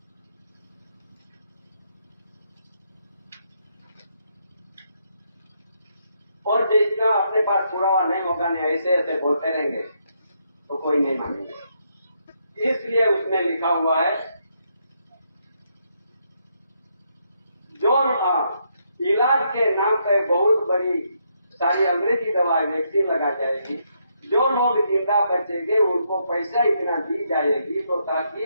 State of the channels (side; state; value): both; inverted; correlation -0.76